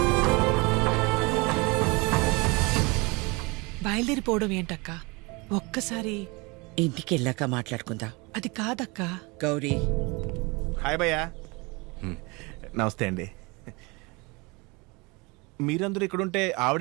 బయలుదేరిపోవడం ఏంటక్క? ఒక్కసారి ఇంటికి వెళ్ళాక మాట్లాడుకుందా. అది కాదక్క. గౌరీ, హాయ్ భయ్యా. నమస్తే అండి. మీరందరూ ఇక్కడుంటే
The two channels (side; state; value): left; quieter; 26.8 dB